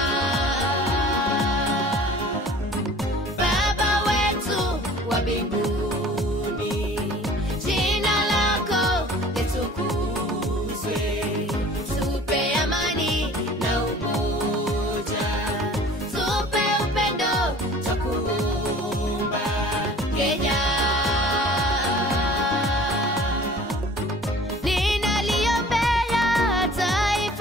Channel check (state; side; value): normal; both; correlation 0.47